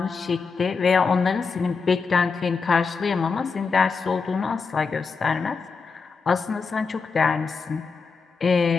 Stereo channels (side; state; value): right; quieter; 5.0 dB